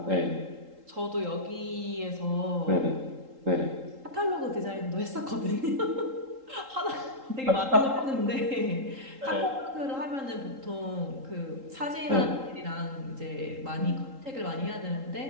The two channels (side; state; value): left; late; 3.8 ms